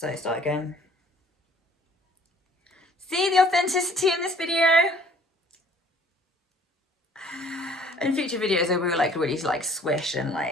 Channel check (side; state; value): both; normal; correlation 0.56